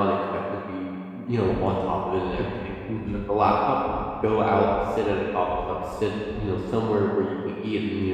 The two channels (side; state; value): both; identical; correlation 1.00